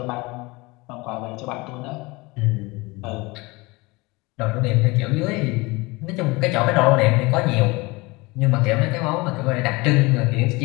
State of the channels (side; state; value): right; quieter; 24.0 dB